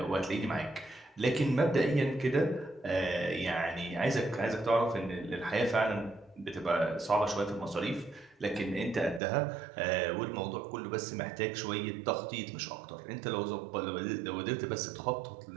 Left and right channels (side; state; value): left; drops out; at 9.2 s